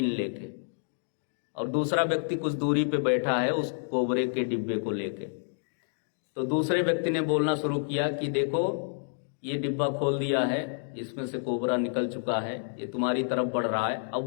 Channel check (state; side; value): silent; right; digital silence